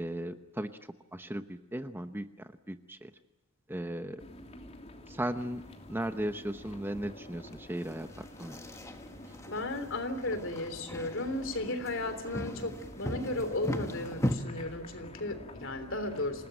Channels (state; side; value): normal; both; correlation 0.39